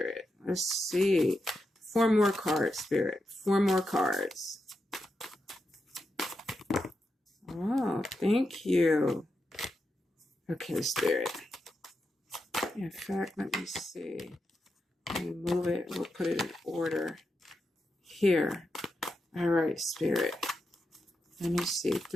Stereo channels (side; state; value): both; normal; correlation 0.86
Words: Let's see. 4 more cards, Spirit. 4 more cards. Oh, thank you. Okay, Spirit. In fact, let me see. Let me move it. We'll put it in order. Here. All right, Spirit. Let me see.